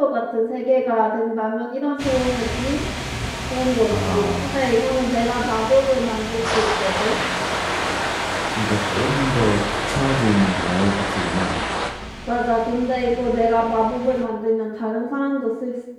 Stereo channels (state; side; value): identical; both; correlation 1.00